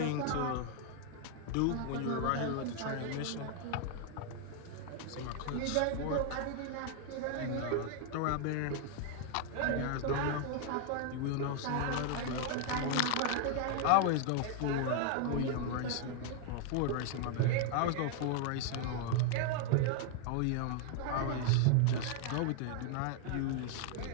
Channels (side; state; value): both; different; correlation 0.00